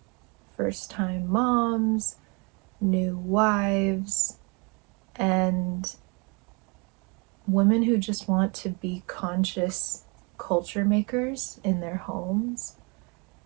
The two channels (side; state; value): left; quieter; 31.4 dB